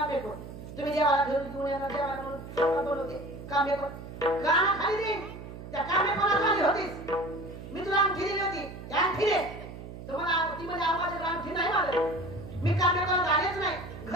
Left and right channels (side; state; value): right; noise; hum, 12 dB below the sound